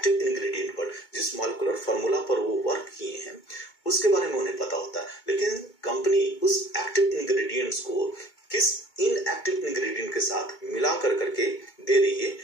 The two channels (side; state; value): right; late; 2.2 ms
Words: इंग्रेडिएंट पर, जिस मॉलिक्यूलर फार्मूला पर वो वर्क किए हैं उसके बारे में उन्हें पता होता है। लेकिन कंपनी उस एक्टिव इंग्रेडिएंट्स को किस इनएक्टिव इंग्रेडिएंट के साथ मिला करके दे रही है,